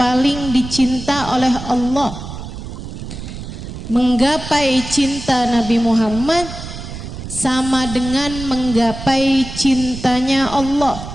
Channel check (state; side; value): noise; right; rumble, 10 dB below the sound